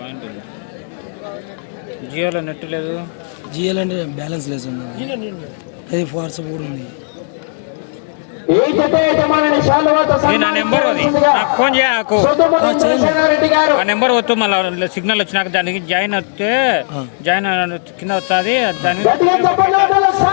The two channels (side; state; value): right; silent; digital silence